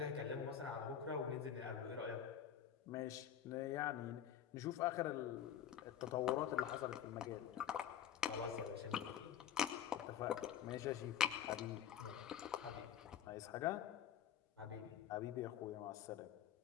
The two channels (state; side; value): quieter; right; 9.4 dB